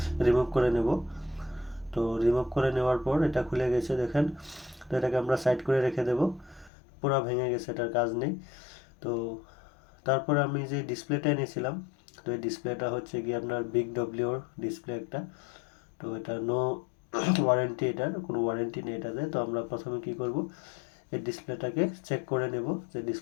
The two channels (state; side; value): drops out; right; at 6.7 s